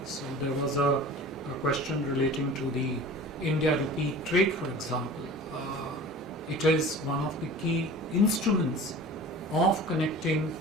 So there was a question relating to the India-Rupee trade, for example. It is one of the key instruments of connecting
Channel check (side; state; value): both; normal; correlation 0.40